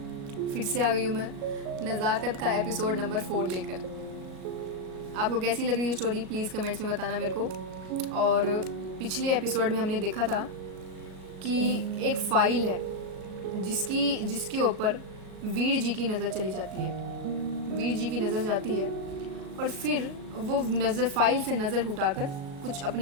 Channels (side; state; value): left; late; 37 ms